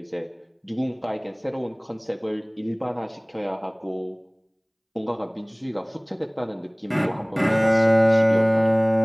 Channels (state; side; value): identical; both; correlation 1.00